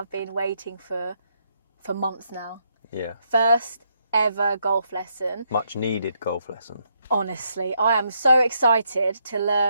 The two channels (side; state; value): both; inverted; correlation -0.76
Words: been waiting for months now. Yeah. First ever golf lesson. Much needed golf lesson. Honestly, I am so excited to